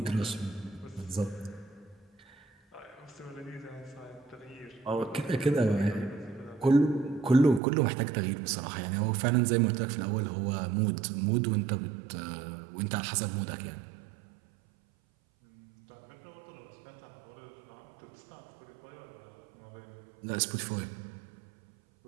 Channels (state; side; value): drops out; left; at 7.6 s